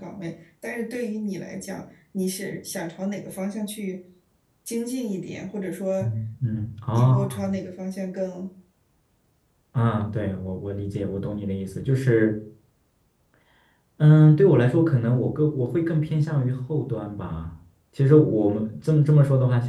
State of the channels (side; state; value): both; identical; correlation 1.00